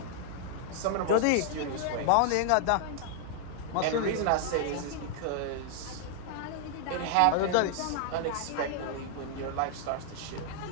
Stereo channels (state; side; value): different; both; correlation 0.00